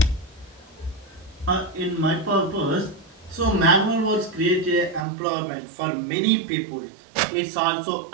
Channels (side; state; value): left; drops out; at 5.1 s